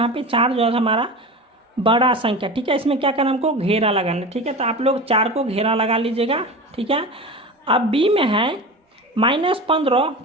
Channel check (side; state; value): both; normal; correlation 0.30